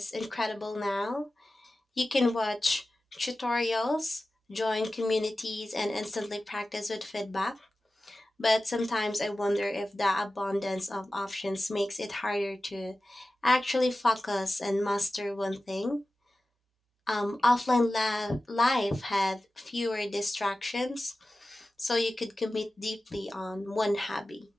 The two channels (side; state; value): both; normal; correlation 0.95